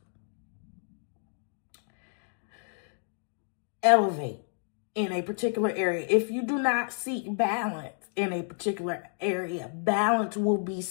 elevate in a particular area, if you do not seek balance in a particular area, balance will be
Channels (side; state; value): right; silent; 58 dB below the other